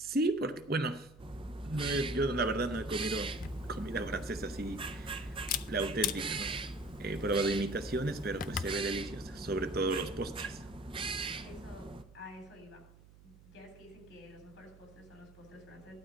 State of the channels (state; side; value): noise; right; hum, 23 dB below the sound